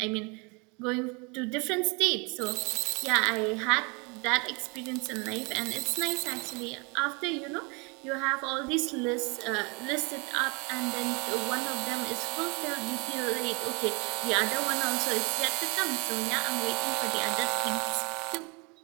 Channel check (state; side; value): quieter; left; 30.6 dB